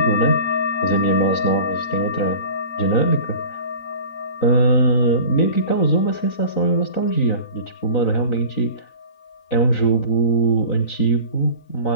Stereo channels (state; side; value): late; right; 4.0 ms